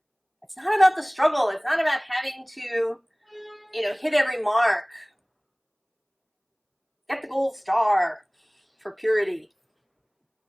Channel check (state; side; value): identical; both; correlation 1.00